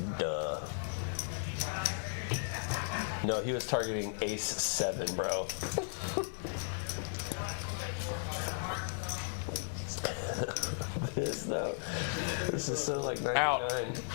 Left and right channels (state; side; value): silent; right; 54 dB below the other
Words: No, he was targeting ace 7, bro. though. This is so like 99.